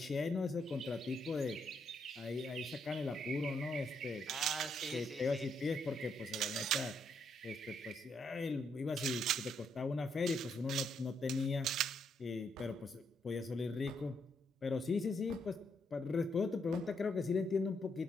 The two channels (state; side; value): normal; both; correlation 0.76